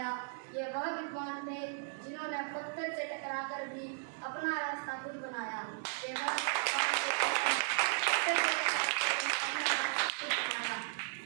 ये वह विद्वान थे जिन्होंने पत्थर से टकराकर भी अपना रास्ता खुद बनाया।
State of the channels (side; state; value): left; silent; 54 dB below the other